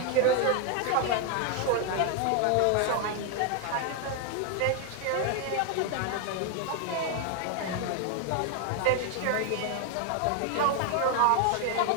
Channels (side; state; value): both; different; correlation 0.00